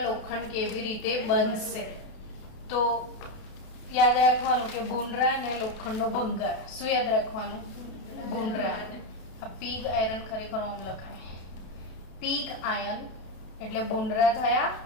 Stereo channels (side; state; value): right; late; 32 ms